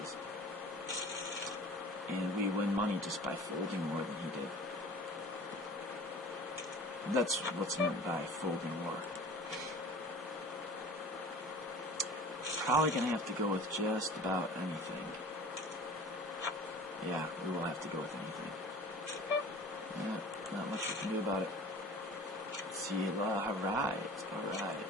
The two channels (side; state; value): both; normal; correlation 0.42